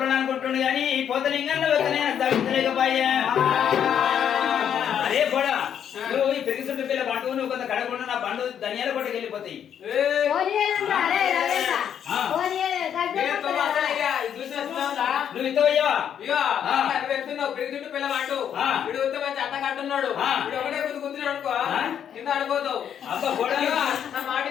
అనుకుంటుండు కానీ పోతలింగంలో తగ్గలేకపోయా అదే కూడా నువ్వు ఈ పెరిగి చుట్టూ పిల్ల బండు నువ్వు కొంత కడగకుండా నా బండు ధనియాల కొట్టకి వెళ్ళిపోతాయి నువ్వు ఇంత పెరిగి పిల్ల బండు వీడు మంచి అట్ట కట్టున్నాడు ఒకటే గుర్తుకుతున్నాడు అనుకో కింద ఆడిపోతావు అబ్బా కూడా నా మాట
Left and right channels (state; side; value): quieter; right; 8.9 dB